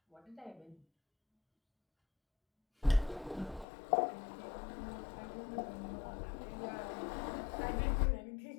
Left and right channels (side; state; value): right; drops out; at 3.7 s